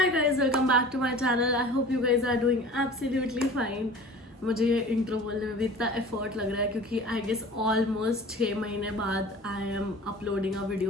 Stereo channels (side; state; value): both; normal; correlation 0.42